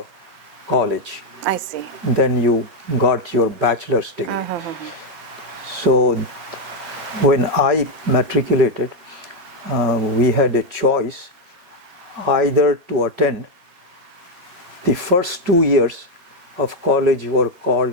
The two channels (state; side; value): late; left; 5.5 ms